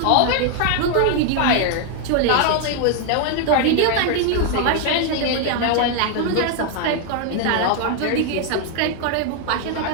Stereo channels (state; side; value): different; both; correlation 0.00